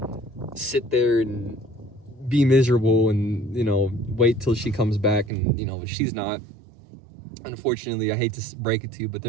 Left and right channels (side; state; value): left; drops out; at 5.3 s